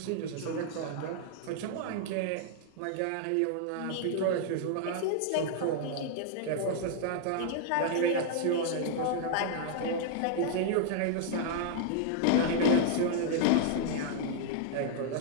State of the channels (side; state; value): both; different; correlation -0.01